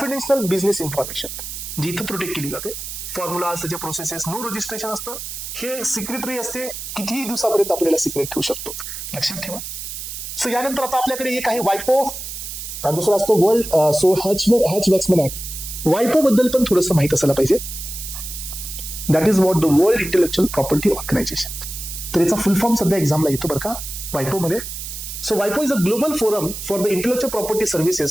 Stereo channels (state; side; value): noise; right; hiss, 8 dB below the sound